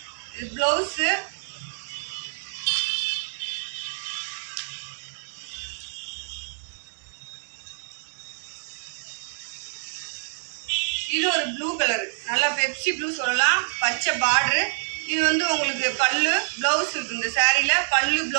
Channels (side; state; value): left; silent; digital silence